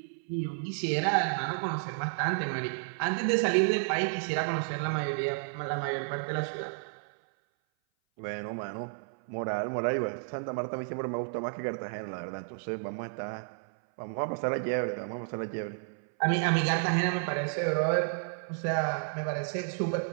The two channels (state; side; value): silent; left; 57 dB below the other